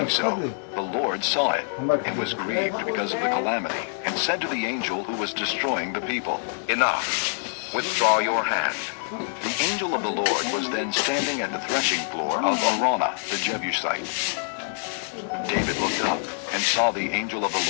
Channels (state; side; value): silent; right; digital silence